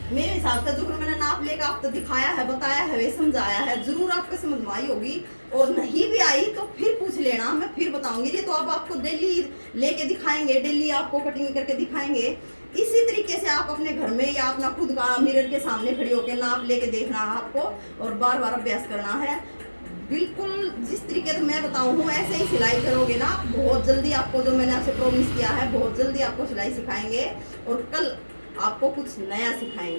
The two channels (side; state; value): both; inverted; correlation -1.00